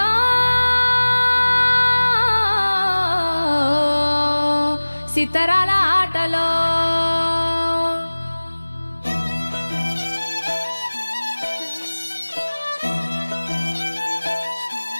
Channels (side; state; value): both; inverted; correlation -1.00